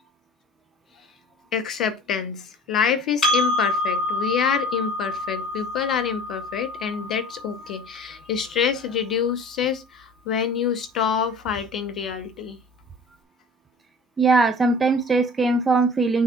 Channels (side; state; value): both; normal; correlation 0.44